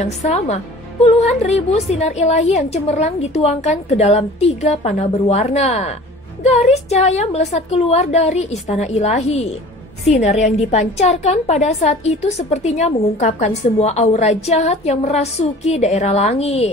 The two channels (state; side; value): normal; both; correlation 0.44